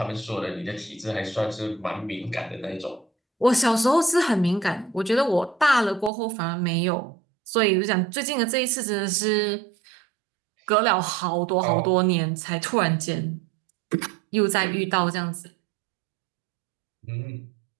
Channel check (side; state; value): left; drops out; at 6.1 s